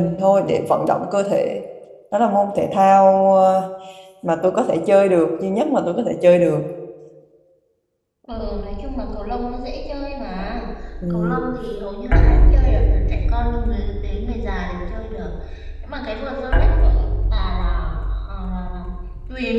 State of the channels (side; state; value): both; identical; correlation 1.00